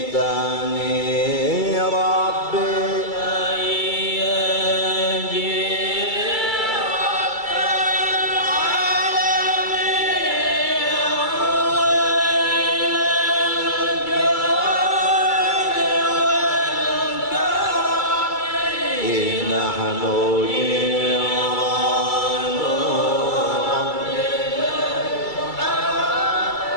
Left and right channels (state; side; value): late; right; 2.3 ms